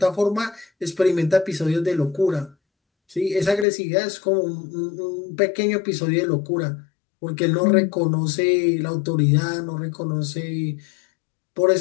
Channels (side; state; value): right; drops out; at 3.7 s